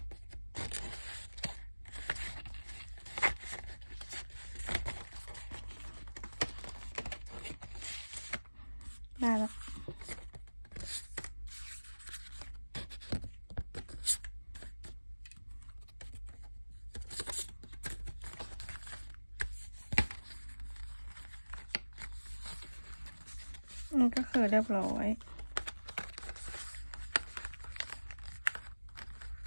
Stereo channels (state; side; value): inverted; both; correlation -1.00